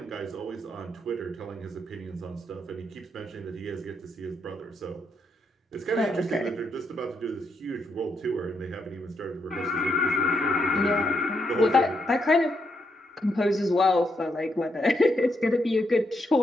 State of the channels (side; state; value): both; normal; correlation 0.78